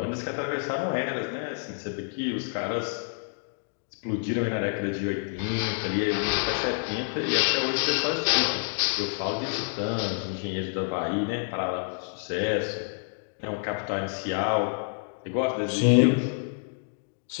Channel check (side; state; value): right; silent; 59 dB below the other